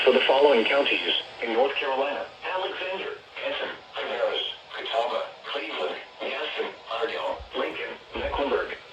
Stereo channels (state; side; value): identical; both; correlation 1.00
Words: for the following counties: in North Carolina, Alexander,